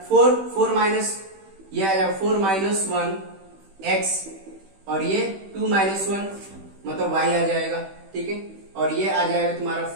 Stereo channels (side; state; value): left; late; 16 ms